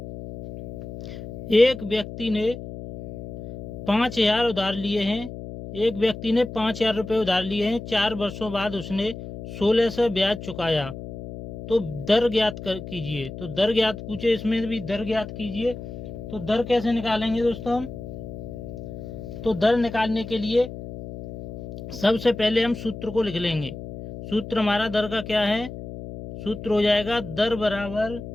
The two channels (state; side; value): noise; left; hum, 11 dB below the sound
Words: एक व्यक्ति ने 5,000 उधार लिए हैं, एक व्यक्ति ने 5,000 रुपये उधार लिए हैं। 4 वर्षों बाद उसने 1600 ब्याज चुकाया, तो दर ज्ञात कीजिए। तो दर ज्ञात पूछे, इसमें भी दर ज्ञात कीजिए। तो दर कैसे निकालेंगे दोस्तों हम, तो दर निकालने के लिए सबसे पहले हम सूत्र को लिख लेंगे। सूत्र हमारा दर का क्या है, सूत्र हो जाएगा दर बराबर